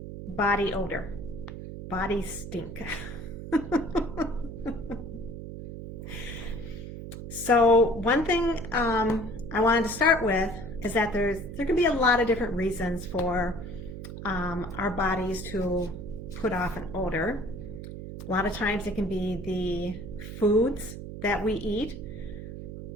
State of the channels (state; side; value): noise; right; hum, 9 dB below the sound